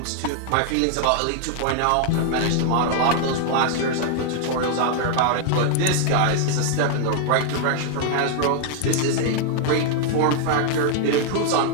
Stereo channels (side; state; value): both; different; correlation 0.00